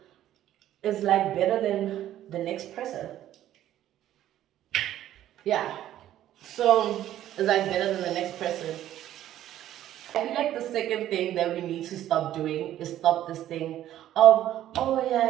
like better than the next person. Yeah, so it's like better than the next person. I feel like the second thing that we need to stop doing is stop this thing of, oh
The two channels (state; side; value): quieter; left; 12.5 dB